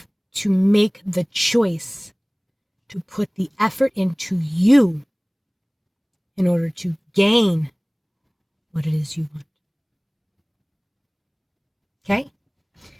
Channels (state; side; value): identical; both; correlation 1.00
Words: to make the choice to put the effort into you in order to gain what it is you want. Okay?